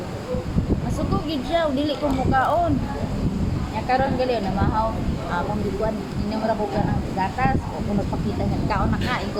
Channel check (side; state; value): both; identical; correlation 1.00